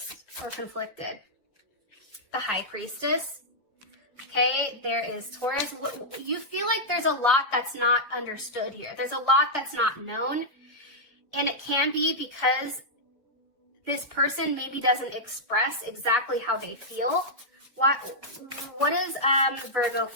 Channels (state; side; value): normal; both; correlation -0.08